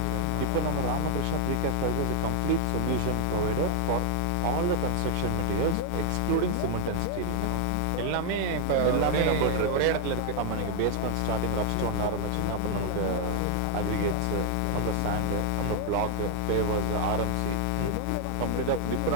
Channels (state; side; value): different; both; correlation -0.01